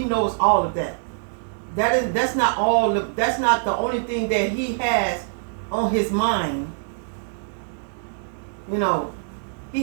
knows all of that. That's not all. That's not the only thing that he has on his mind. You know,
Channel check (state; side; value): silent; left; digital silence